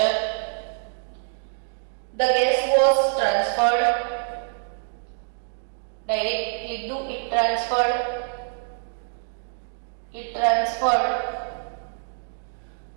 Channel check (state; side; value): silent; left; digital silence